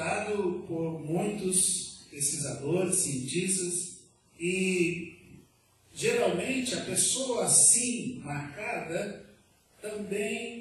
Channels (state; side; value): identical; both; correlation 1.00